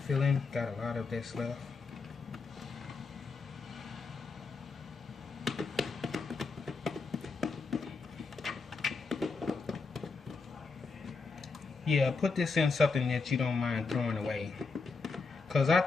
filling. Got a lot of this left. Yeah, put this in something that you don't mind throwing away. Because I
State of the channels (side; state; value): right; quieter; 4.4 dB